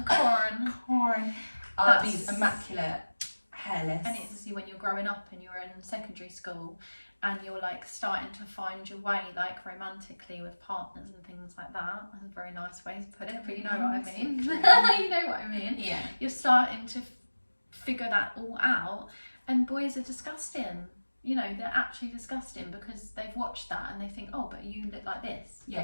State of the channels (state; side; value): inverted; both; correlation -1.00